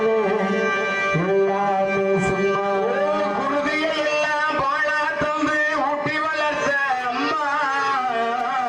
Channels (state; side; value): identical; both; correlation 1.00